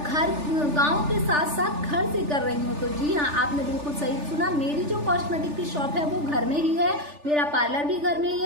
घर गांव के साथ साथ घर से कर रही हूँ। तो जी हाँ, आपने बिल्कुल सही सुना, मेरी जो कॉस्मेटिक की शॉप है वो घर में ही है, मेरा पार्लर भी घर में ही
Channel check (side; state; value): left; late; 3.4 ms